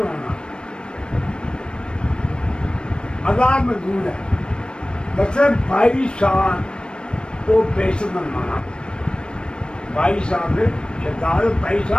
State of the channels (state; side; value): late; right; 0.054 ms